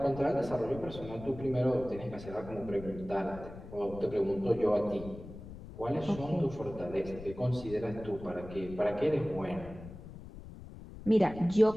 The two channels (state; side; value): noise; left; rumble, 14 dB below the sound